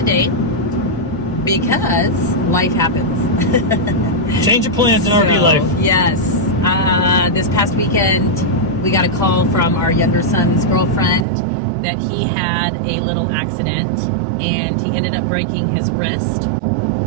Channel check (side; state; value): left; drops out; at 11.2 s